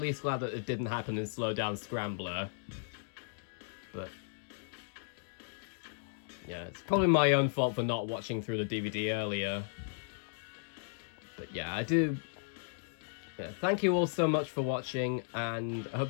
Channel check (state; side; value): silent; right; digital silence